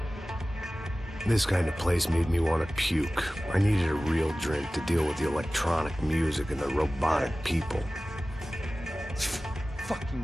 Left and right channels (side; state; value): both; normal; correlation 0.97